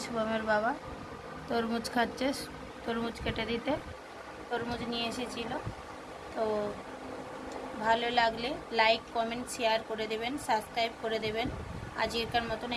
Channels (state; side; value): identical; both; correlation 1.00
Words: শুভমের বাবা তরমুজ খাচ্ছে, তরমুজ কেটে দিতে তরমুজ নিয়ে এসেছিল। তো ভালো লাগলে লাইক কমেন্ট শেয়ার করে দেবেন, সাবস্ক্রাইব করে দেবেন। আজকের মতন